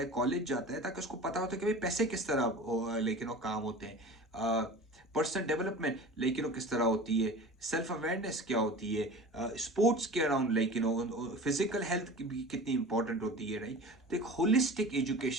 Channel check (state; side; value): normal; both; correlation 0.37